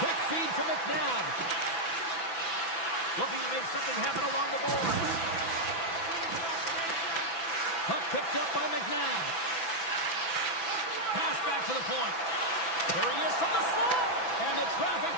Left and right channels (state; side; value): late; right; 6.0 ms